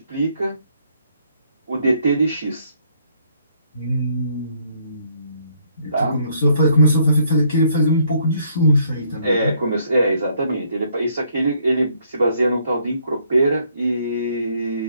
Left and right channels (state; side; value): inverted; both; correlation -0.68